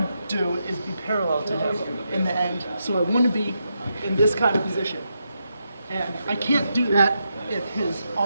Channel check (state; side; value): inverted; both; correlation -0.84